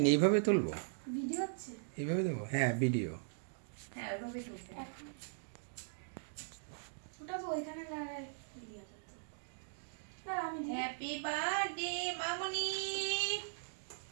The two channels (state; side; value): silent; left; digital silence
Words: এইভাবে তুলবো? ভিডিও হচ্ছে? এইভাবে দেবো? হ্যাঁ, ভিডিও। হ্যাঁ, ওইভাবে তুলতে। ওটা তো ওইখানে দাঁড়ায় ভিডিও করতে। না আমি দিই। হ্যাপি বার্থডে মামনি,